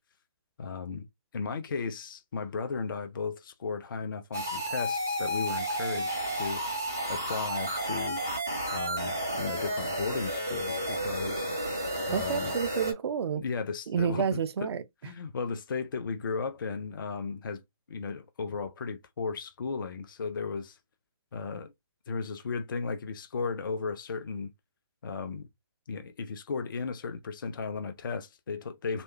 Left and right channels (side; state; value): both; inverted; correlation -0.61